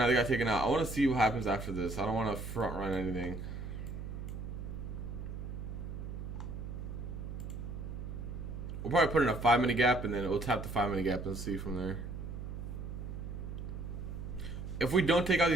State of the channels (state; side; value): noise; right; hum, 7 dB below the sound